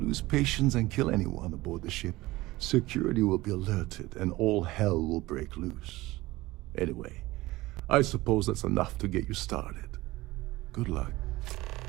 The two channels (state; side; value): quieter; left; 19.1 dB